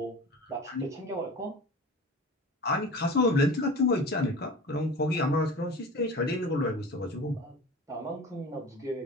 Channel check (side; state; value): both; normal; correlation 0.36